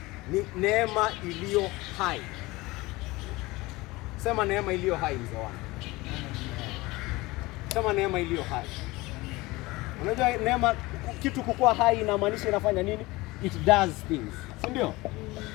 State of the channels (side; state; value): right; quieter; 21.3 dB